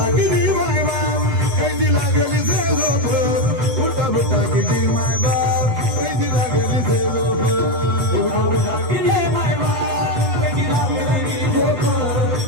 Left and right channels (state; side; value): late; left; 8.1 ms